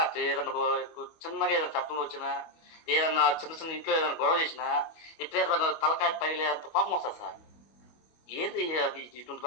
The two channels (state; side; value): late; right; 25 ms